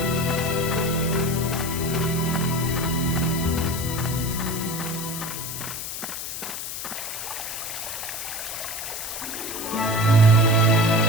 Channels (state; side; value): noise; left; hiss, 6 dB below the sound